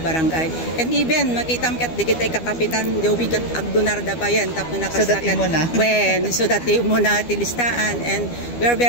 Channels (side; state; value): right; late; 12 ms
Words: and even makita ket digitay kakapitan jowi ket agdonar da bayan tapno nakasakat when so that mo na ti listaan and we are